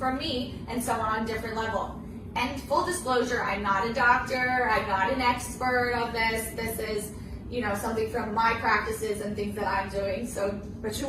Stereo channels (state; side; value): identical; both; correlation 1.00